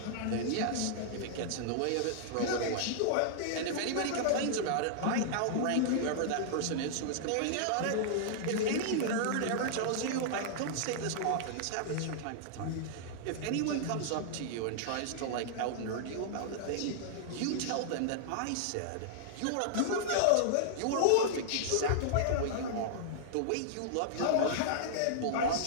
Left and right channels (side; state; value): both; different; correlation -0.01